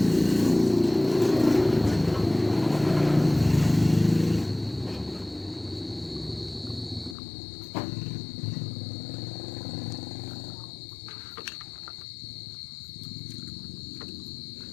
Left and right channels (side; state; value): right; drops out; at 7.2 s